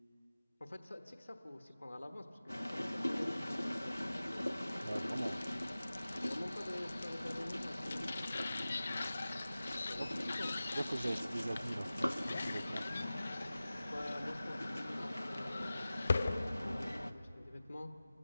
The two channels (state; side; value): inverted; both; correlation -0.97